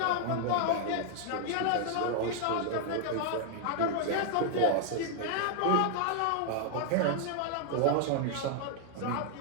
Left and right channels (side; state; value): both; different; correlation 0.00